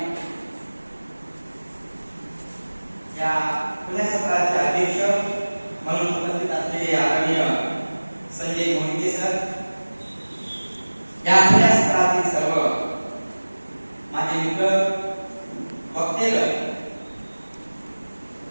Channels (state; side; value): inverted; both; correlation -1.00